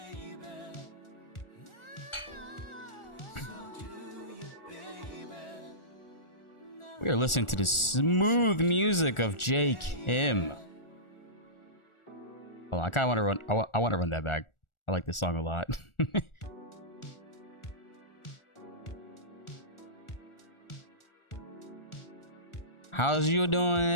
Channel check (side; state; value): right; late; 1.4 ms